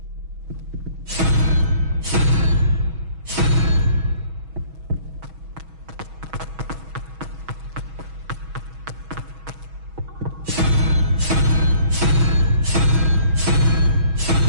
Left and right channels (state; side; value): late; left; 6.2 ms